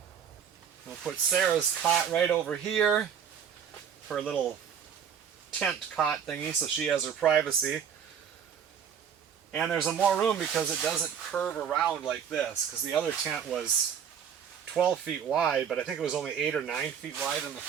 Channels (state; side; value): quieter; left; 7.9 dB